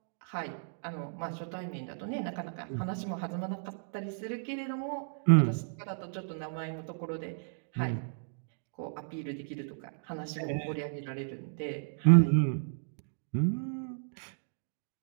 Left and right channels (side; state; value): left; silent; digital silence